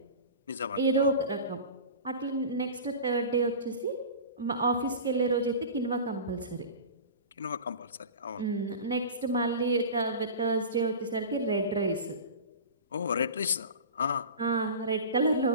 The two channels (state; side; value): inverted; both; correlation -0.33